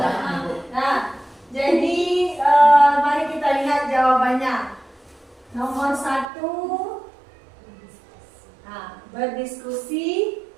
Nah, jadi mari kita lihat jawabannya. Nomor 1, berdiskusi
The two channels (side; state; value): left; drops out; at 6.2 s